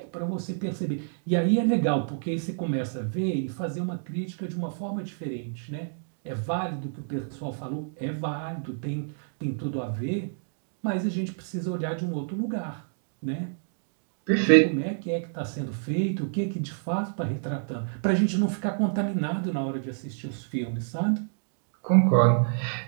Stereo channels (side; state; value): left; silent; digital silence